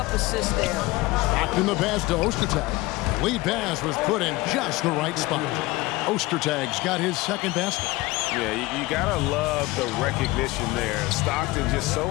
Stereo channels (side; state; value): right; quieter; 20.5 dB